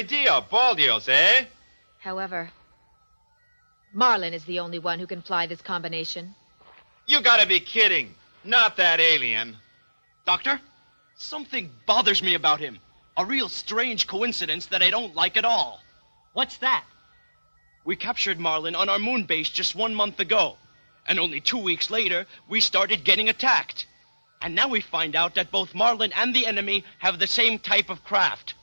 Baldios, eh? However, Marlin is the only one who can fly this combination. You gotta be kidding. Not that alien. Doctor, something bothers me about him. A real strange coincidence that I don't like at all. What's that? We captured Marlin on our moon base just 1 month ago. And only 2 weeks later, we started getting attacked. And now we find out that both Marlin and the enemy have the same type of craft.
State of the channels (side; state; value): both; inverted; correlation -1.00